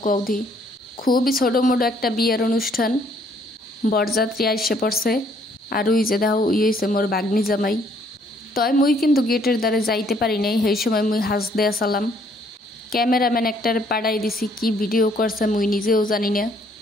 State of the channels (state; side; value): normal; both; correlation 0.64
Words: কৌধি। খুবই ছোটো মোটো একটা বিয়ের অনুষ্ঠান, বরযাত্রী আইসে পড়ছে। আর ওই যে দেখো ওই হয়েছে মোর বাগনি জামাই। তয় মুই কিন্তু গেটের দ্বারে যাইতে পারি নাই, সেই সময় মুই হাস দেয়া সালাম। ক্যামেরাম্যান একটার পাড়াই দিছি, কি ভিডিও করছে মুই নিজেও জানি না।